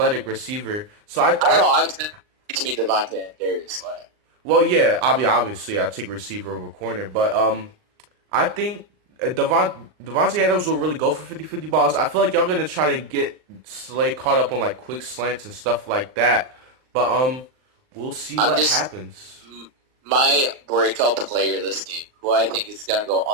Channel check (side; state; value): left; late; 39 ms